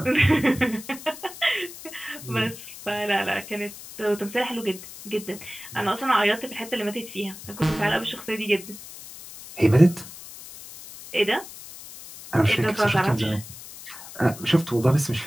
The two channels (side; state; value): left; noise; hiss, 15 dB below the sound